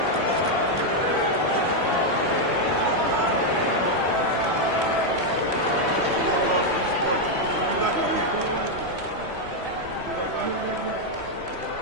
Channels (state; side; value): late; left; 3.1 ms